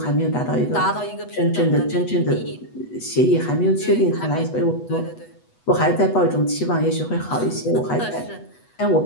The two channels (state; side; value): late; right; 8.2 ms